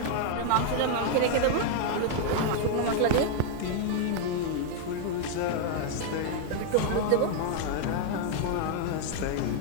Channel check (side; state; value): both; different; correlation 0.00